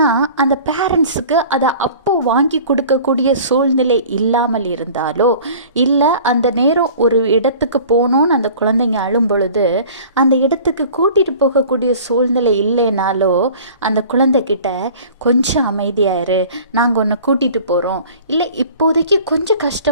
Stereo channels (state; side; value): inverted; both; correlation -0.45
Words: அந்த பேரண்ட்ஸுக்கு அதை அப்போ வாங்கி கொடுக்கக்கூடிய சூழ்நிலை இல்லாமல் இருந்தாலோ, இல்லை அந்த நேரம் ஒரு இடத்துக்கு போகணுன்னு அந்த குழந்தைங்க அழும் பொழுது அந்த இடத்துக்கு கூட்டிகிட்டு போகக்கூடிய சூழ்நிலை இல்லைனாலோ, அந்த குழந்தைகிட்ட கொஞ்சம் அமைதியாயிரு, நாங்கள் உன்னை கூட்டிகிட்டு போகிறோம், இல்லை இப்போதைக்கு கொஞ்சம்